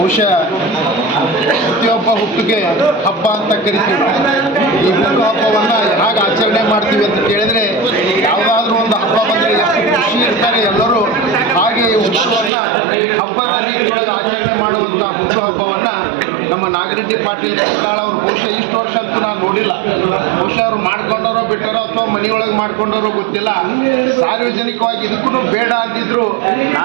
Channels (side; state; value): left; drops out; at 12.5 s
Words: ಪ್ರತಿಯೊಬ್ಬ ಹುಟ್ಟಿಗೆ ಹಬ್ಬ ಅಂತ ಕರಿತೀವಿ. ಈ ಹುಟ್ಟುಹಬ್ಬವನ್ನು ಹೇಗೆ ಆಚರಣೆ ಮಾಡ್ತೀವಿ ಅಂತ ಕೇಳಿದರೆ, ಯಾವುದಾದ್ರೂ ಒಂದು ಹಬ್ಬ ಬಂದರೆ ಎಷ್ಟು ಖುಷಿ ಇರ್ತಾರೆ ಎಲ್ಲರೂ, ಹಾಗೆ ಈ ಹುಟ್ಟುಹಬ್ಬವನ್ನು ಹಬ್ಬದ ರೀತಿಯೊಳಗೆ ಆಚರಣೆ ಮಾಡುವಂಥ ಹುಟ್ಟುಹಬ್ಬವನ್ನು ನಮ್ಮ ನಾಗರೆಡ್ಡಿ ಪಾಟೀಲ್ ಕರದಾಳ್ ಅವರು ಬಹುಶಃ ಇಷ್ಟು ವರ್ಷ ಅಂತೂ ನಾನು ನೋಡಿಲ್ಲ. ಬಹುಶಃ ಅವರು ಮಾಡ್ಕೊಂಡಾರೋ ಬಿಟ್ಟಾರೋ ಅಥವಾ ಮನೆಯೊಳಗೆ ಮಾಡ್ಕೊಂಡಾರೋ ಗೊತ್ತಿಲ್ಲ. ಸಾರ್ವಜನಿಕವಾಗಿ ಇದಕ್ಕೂ ಬೇಡ ಅಂದಿದ್ರು